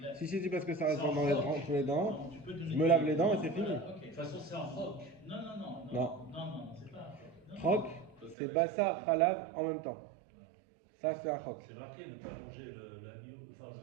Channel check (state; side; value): drops out; left; at 8.3 s